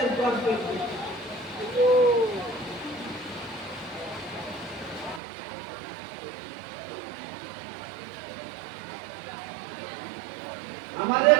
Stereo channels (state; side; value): drops out; left; at 5.2 s